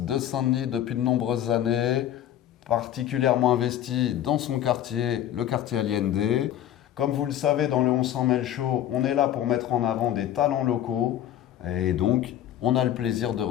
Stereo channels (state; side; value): quieter; right; 11.6 dB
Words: Saint-Denis depuis de nombreuses années, particulièrement investie dans son quartier, le quartier Allende. Comme vous le savez, dans le On s'en mêle show, on est là pour mettre en avant des talents locaux et donc on a le plaisir de